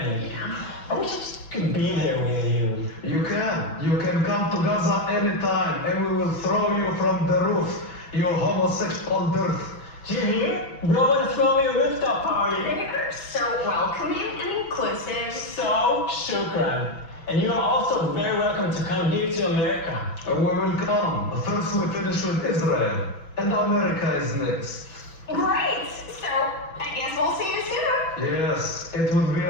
I wish I just could be there with you. You can come to Gaza anytime, and we will throw you from the roof, you homosexual dirt. Do you hear? Bro, wanna throw me a rooftop party. You're so welcoming and inclusive. So, shukran. And you are also very welcome to come here to America. We will come. First we finish with Israel, and America is next. Great. So, I guess we'll see you soon. Yes, it will be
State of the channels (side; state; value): right; late; 6.0 ms